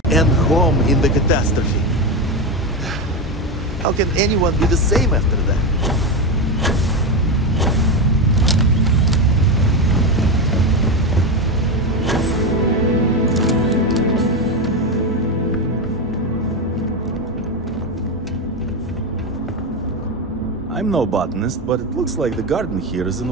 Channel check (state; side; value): normal; both; correlation 0.14